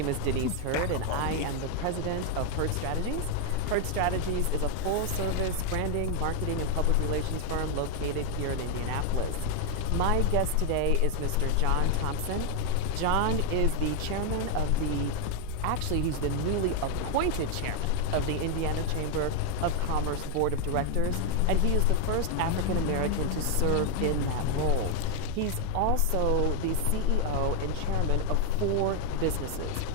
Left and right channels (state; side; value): different; both; correlation 0.00